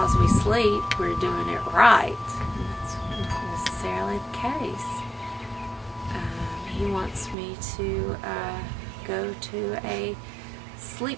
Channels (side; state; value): left; drops out; at 7.4 s